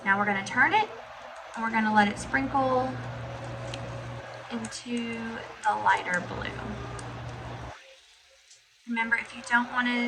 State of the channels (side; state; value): both; identical; correlation 1.00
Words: Now we're going to turn it, and we're going to let it sprinkle into the lighter blue. Remember, if you don't want